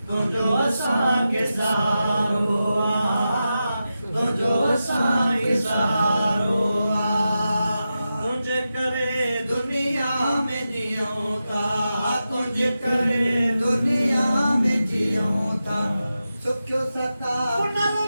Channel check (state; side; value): inverted; both; correlation -0.91